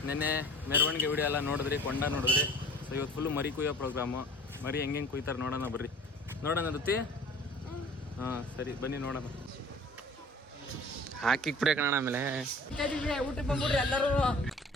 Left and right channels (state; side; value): normal; both; correlation 0.46